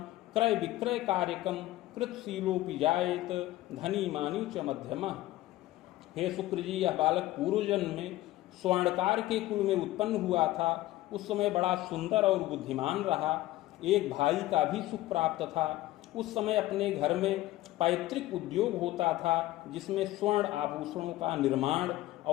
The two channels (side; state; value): right; quieter; 16.5 dB